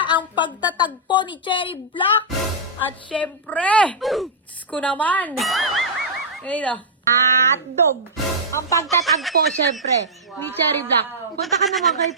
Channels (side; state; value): both; normal; correlation -0.11